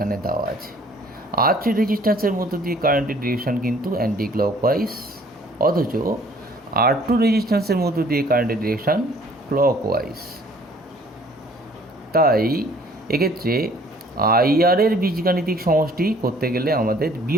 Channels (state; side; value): normal; both; correlation 0.57